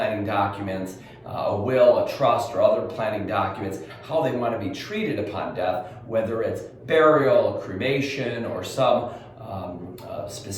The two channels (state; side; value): identical; both; correlation 1.00